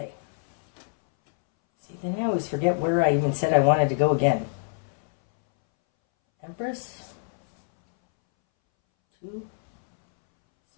See, then I always forget where I even said I wanted to go again. Empress? 2?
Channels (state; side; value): silent; right; 62 dB below the other